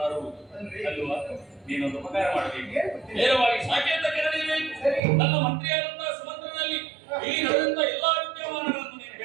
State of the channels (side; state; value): left; drops out; at 5.0 s